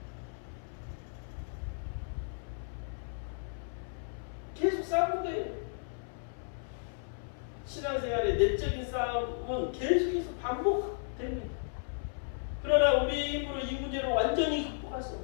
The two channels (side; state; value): right; silent; 55 dB below the other